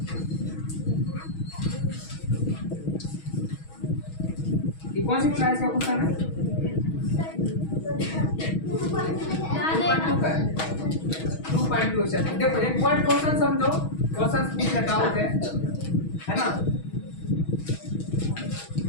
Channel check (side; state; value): right; late; 6.3 ms